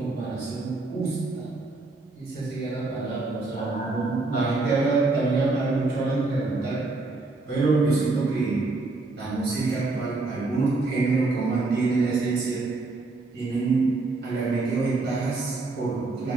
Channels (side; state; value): left; quieter; 3.4 dB